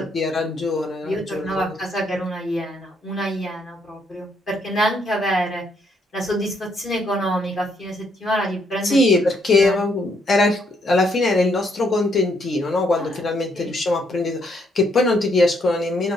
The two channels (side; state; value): both; normal; correlation 0.72